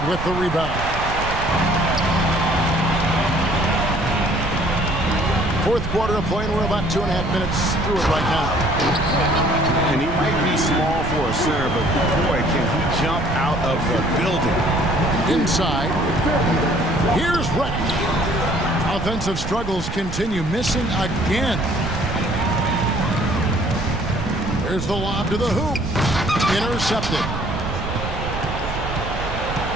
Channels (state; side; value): noise; right; rumble, 6 dB below the sound